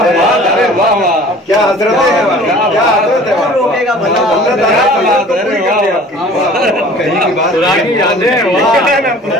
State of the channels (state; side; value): normal; both; correlation 0.47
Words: है। अरे वाह वाह, क्या हजरत है, क्या हजरत है। कौन रोकेगा भला कहीं की बात पुरानी यादें।